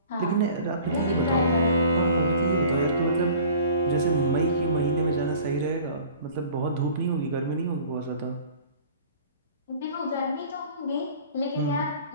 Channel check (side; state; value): both; inverted; correlation -0.46